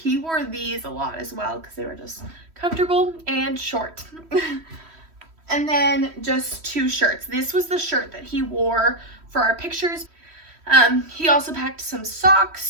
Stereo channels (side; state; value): left; late; 3.1 ms